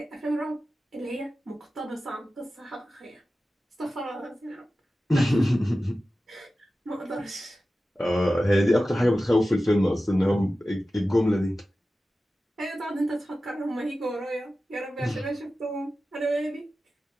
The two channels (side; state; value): both; normal; correlation 0.94